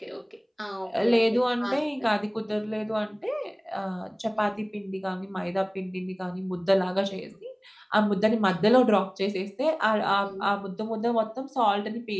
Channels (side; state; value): both; identical; correlation 1.00